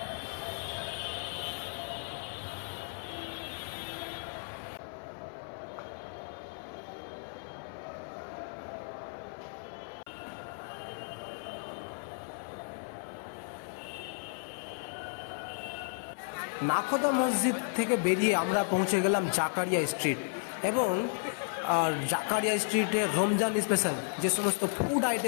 নাখোদা মসজিদ থেকে বেরিয়ে আমরা পৌঁছে গেলাম জাকারিয়া স্ট্রিট। এবং জাকারিয়া স্ট্রিটে রমজান স্পেশাল যে সমস্ত ফুড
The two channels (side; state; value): right; silent; 55 dB below the other